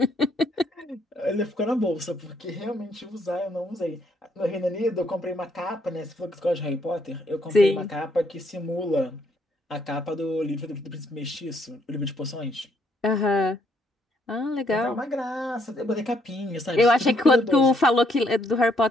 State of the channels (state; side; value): normal; both; correlation 0.71